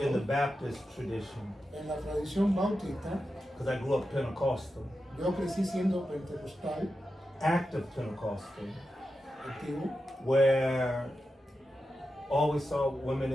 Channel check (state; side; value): normal; both; correlation 0.90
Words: Baptist tradition, en la tradición bautista, because I grew up Pentecostal, yo crecí siendo pentecostal, active Pentecostal, activo, where always saw women